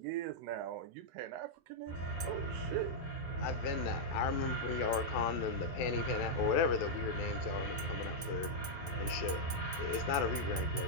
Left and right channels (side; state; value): both; normal; correlation -0.05